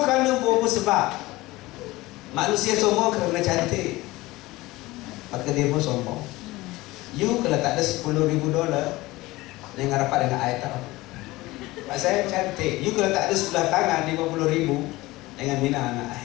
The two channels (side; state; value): right; quieter; 19.7 dB